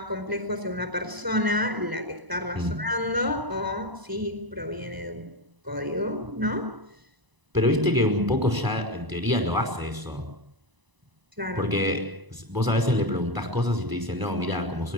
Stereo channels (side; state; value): left; late; 1.0 ms